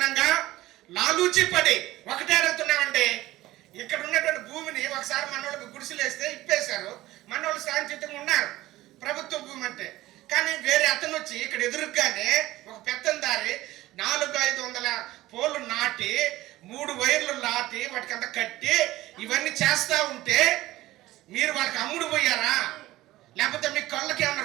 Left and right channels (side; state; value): left; quieter; 16.8 dB